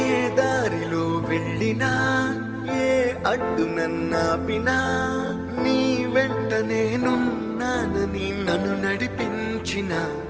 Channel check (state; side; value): identical; both; correlation 1.00